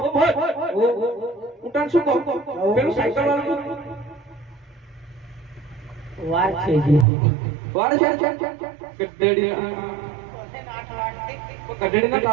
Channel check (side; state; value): left; drops out; at 7.1 s